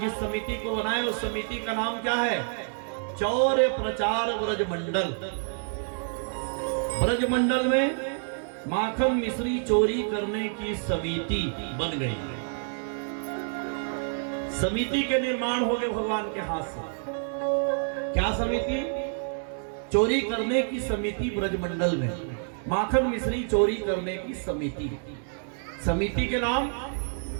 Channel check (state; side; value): silent; left; 59 dB below the other